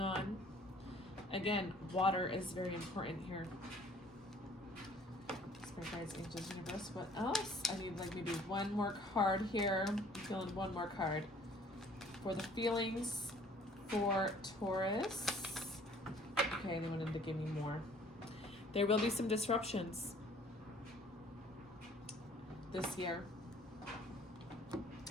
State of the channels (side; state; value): both; normal; correlation 0.55